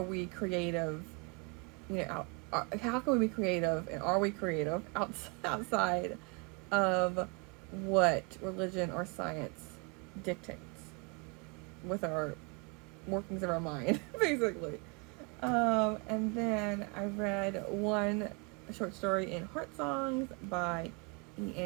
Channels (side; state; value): left; quieter; 32.2 dB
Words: we creative, how can we be creative, and are we creative outside of what religion or science dictates with our workings of our mind, basically. And then I read one short story in Heart Songs by